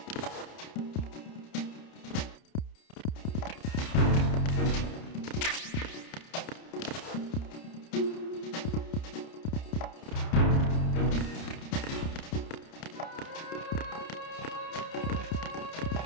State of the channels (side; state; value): right; late; 30 ms